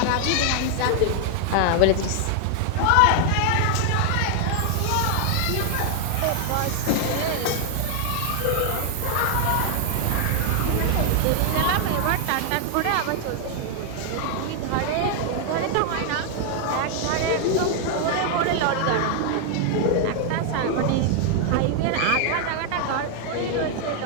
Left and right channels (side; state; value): both; different; correlation 0.00